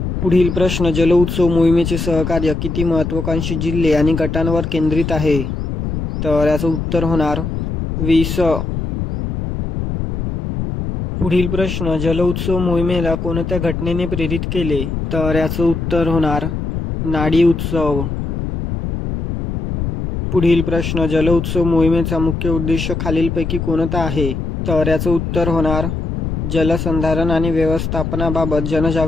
पुढील प्रश्न, जल उत्सव मोहिमेचे सहकार्य किती महत्त्वाकांक्षी जिल्हे आणि गटांवर केंद्रित आहे? तर याचं उत्तर होणार 20. पुढील प्रश्न, जल उत्सव मोहिमेला कोणत्या घटनेने प्रेरित केले? तर याचं उत्तर होणार नाडी उत्सव. पुढील प्रश्न, जल उत्सव मोहिमेचा मुख्य उद्देश खालीलपैकी कोणता आहे? तर याचं उत्तर होणार जलसंधारण आणि व्यवस्थापनाबाबत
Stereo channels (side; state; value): left; noise; rumble, 3 dB below the sound